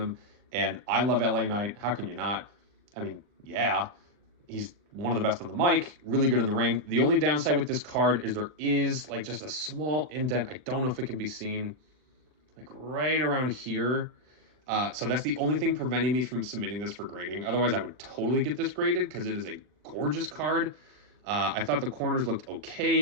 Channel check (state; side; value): late; left; 39 ms